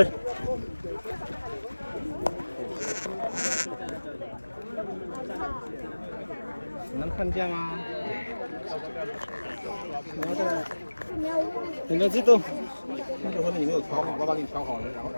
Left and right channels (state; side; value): inverted; both; correlation -1.00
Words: Milancito. 那就说你没有调好，爸爸给你调好了，然